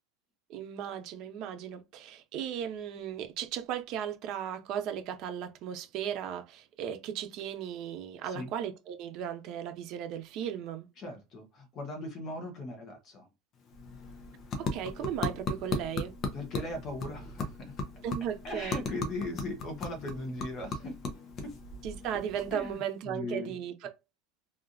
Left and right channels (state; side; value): quieter; left; 3.1 dB